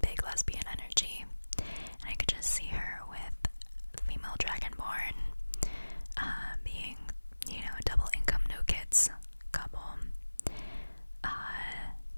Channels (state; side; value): inverted; both; correlation -1.00